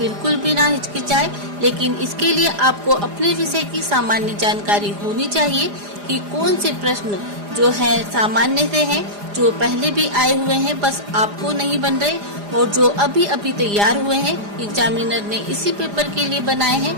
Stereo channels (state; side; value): late; left; 4.9 ms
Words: भी ना हिचकिचाए। लेकिन इसके लिए आपको अपने विषय की सामान्य जानकारी होनी चाहिए कि कौन से प्रश्न जो है सामान्य से हैं, जो पहले भी आए हुए हैं बस आपको नहीं बन रहे, और जो अभी तैयार हुए हैं एग्जामिनर ने इसी पेपर के लिए बनाए हैं,